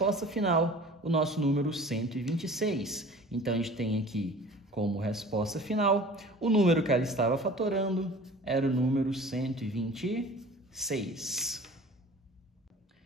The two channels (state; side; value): normal; both; correlation 0.44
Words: final o nosso número 126. Então, a gente tem aqui como resposta final o número que ela estava fatorando era o número 126.